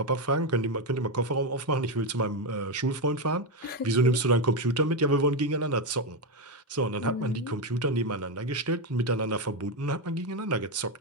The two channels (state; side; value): normal; both; correlation 0.08